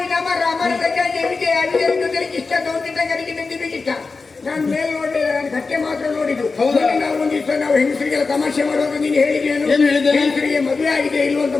ಮರ. ಮರದ ಕೆಳಗೆ ಇಷ್ಟ ಗೌಂಡಿಟ್ಟಂಗರಿಗೆ ನಿಂತಿಬೇಕಿತ್ತ. ನಾನು ಮೇಲೆ ನೋಡಿದೆ, ನಾನು ಕಟ್ಟೆ ಮಾತ್ರ ನೋಡಿದ್ದು. ನಾವು ಒಂದಿವ್ಸ ನಾವು ಹೆಂಗಸರಿಗೆಲ್ಲ ತಮಾಷೆ ಮಾಡುವಾಗ ನೀನು ಹೇಳಿದೇನು? ಹೆಂಗಸರಿಗೆ ಮದುವೆ ಆಗಿದೆ ಇಲ್ವ ಅಂತ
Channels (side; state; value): right; quieter; 4.2 dB